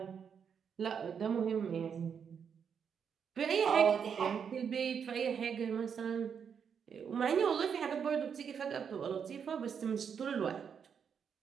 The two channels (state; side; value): quieter; left; 7.1 dB